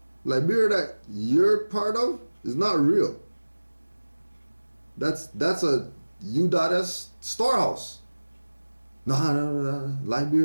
that you're part of is not real. That's a U.S. storehouse. No,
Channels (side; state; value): both; inverted; correlation -1.00